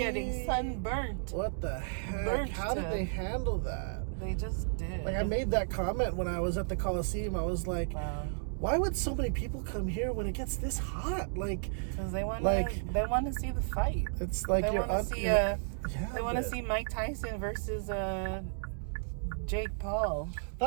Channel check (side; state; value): left; silent; digital silence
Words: sunburnt. What the heck? Burnt How did they handle that? They just did. Like I made that comment when I was at the Colosseum. I was like, wow. Why would so many people come here when it gets this hot? Like, because they want to see the fight. It's like they want to see Mike Tyson versus Jake Paul.